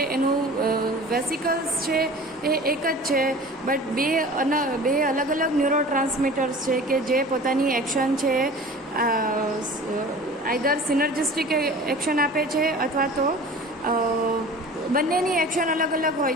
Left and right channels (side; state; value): both; normal; correlation 0.41